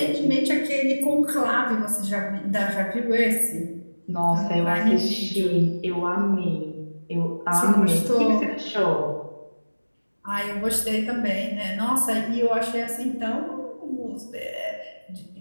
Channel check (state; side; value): inverted; both; correlation -1.00